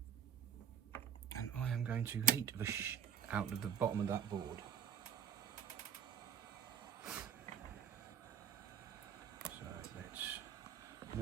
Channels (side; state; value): left; quieter; 8.8 dB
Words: And I am going to heat the out of the bottom of that board. So let's